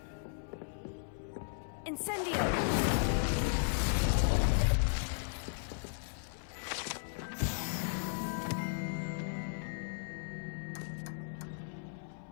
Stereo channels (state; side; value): silent; right; 54 dB below the other